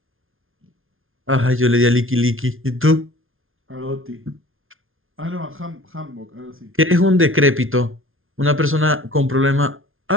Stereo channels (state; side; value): late; left; 0.60 ms